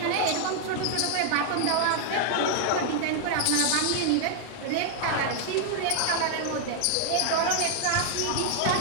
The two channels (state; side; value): different; both; correlation 0.00